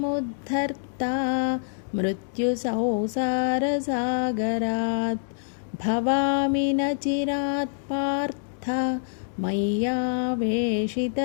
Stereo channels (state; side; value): silent; right; digital silence